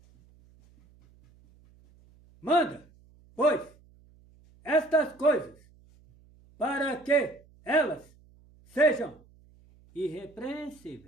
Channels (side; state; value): right; noise; hum, 28 dB below the sound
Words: Manda, pois, estas coisas, para que elas sejam